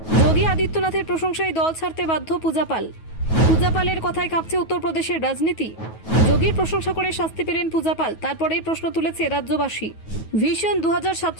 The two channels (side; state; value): right; late; 9.3 ms